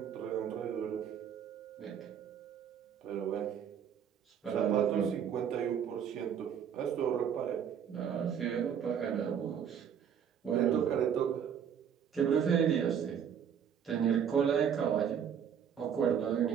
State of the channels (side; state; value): left; quieter; 8.2 dB